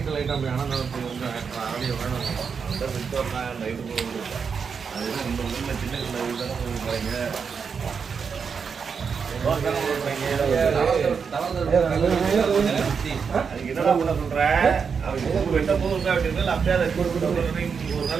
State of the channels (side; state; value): left; quieter; 6.1 dB